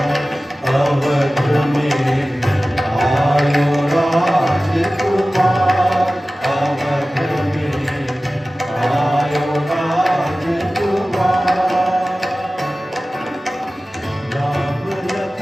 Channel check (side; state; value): both; normal; correlation 0.96